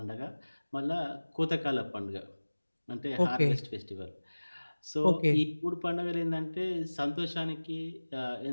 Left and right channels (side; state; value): both; inverted; correlation -1.00